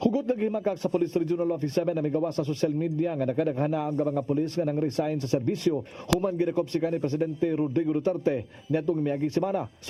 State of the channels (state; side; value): identical; both; correlation 1.00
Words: naghimakak sa Police Regional Office 7 na migawa sa social media nga nakadaghana ang mga pulis nga nang resign sa serbisyo human gidakop si kanhi Presidente Rodrigo Duterte niadtong miaging semana.